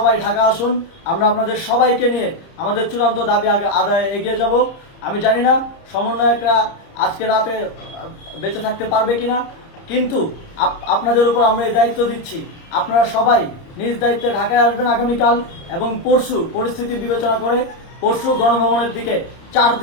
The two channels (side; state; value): right; late; 30 ms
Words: ঢাকা আসুন। আমরা আপনাদের সবাইকে নিয়ে আমাদের চূড়ান্ত দাবি আদায়ে এগিয়ে যাব। আমি জানি না সমন্বয়করা আজকে রাতে বেঁচে থাকতে পারবে কিনা, কিন্তু আপনাদের উপর আমরা এই দায়িত্ব দিচ্ছি। আপনারা সবাই নিজ দায়িত্বে ঢাকায় আসবেন আগামীকাল এবং পরশু পরিস্থিতি বিবেচনা করে পরশু গণভবনের দিকে 4